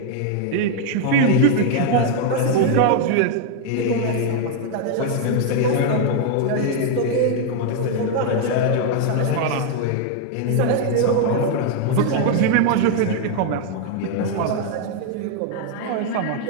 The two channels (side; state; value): both; different; correlation 0.00